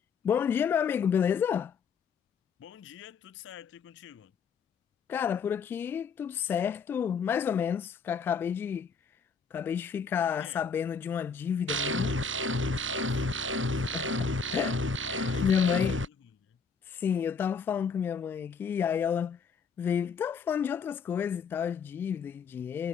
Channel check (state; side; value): quieter; right; 5.7 dB